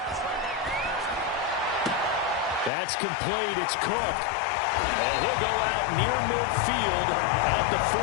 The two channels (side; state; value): right; drops out; at 2.7 s